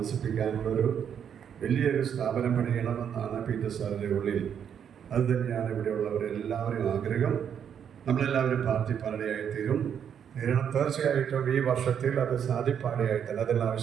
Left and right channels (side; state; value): left; quieter; 8.3 dB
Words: വലിയൊരു സ്ഥാപനം പണിയണമെന്നാണ് പീറ്റർ സാറിൻ്റെ ഉള്ളിൽ. അത് തന്നെയാണ് ഇവിടെയുള്ളവരെല്ലാവരും ആഗ്രഹം. നമ്മളെല്ലാവരും പാർട്ടി പാടയായിത്തീരും. തീർച്ചയായിട്ടും ഈ വർഷത്തിൽ അത് സാധിപ്പാടയായിത്തന്നെ